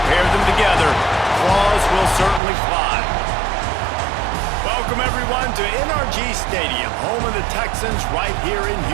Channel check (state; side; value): drops out; left; at 2.4 s